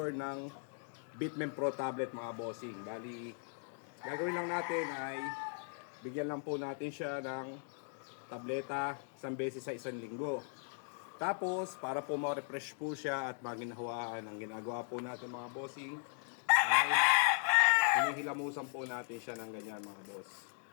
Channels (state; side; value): silent; right; 53 dB below the other